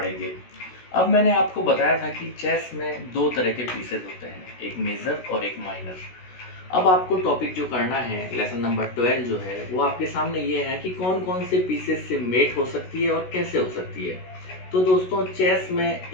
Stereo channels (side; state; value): right; late; 16 ms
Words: अब मैंने आपको बताया था कि चेस में दो तरह के पीसेस होते हैं, एक मेजर और एक माइनर। अब आपको टॉपिक जो करना है, लेसन नंबर 12 जो है वो आपके सामने ये है कि कौन कौन से पीसेस से मेट हो सकती है और कैसे हो सकती है। तो दोस्तों, चेस में